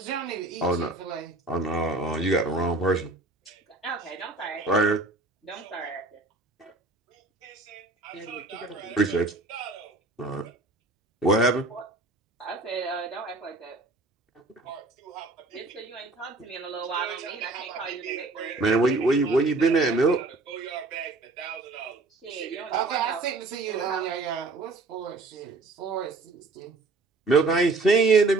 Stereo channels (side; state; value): left; quieter; 3.3 dB